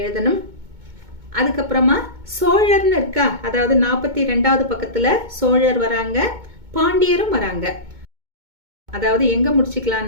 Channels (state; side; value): late; left; 2.2 ms